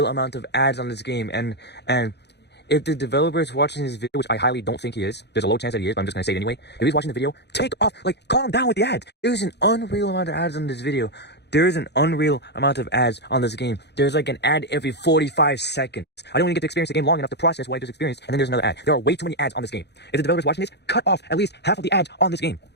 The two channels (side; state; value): right; late; 0.49 ms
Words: amount of ads on this game, and if the developer is watching this video, which I highly don't think he is, there's a low chance that he is, but I'm just gonna say it anyway. If he's watching the video, calm down with the ads. There's an unreal amount of ads on this video. There is an unreal amount of ads on this game. There's like an ad every 45 seconds. I don't even get to experience the game long enough to process what I just experienced, and then there's another ad. There are way too many ads on this game. If the developer's watching this, cut off at least half of the ads on this game.